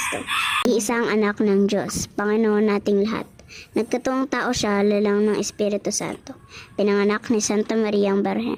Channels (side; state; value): both; identical; correlation 1.00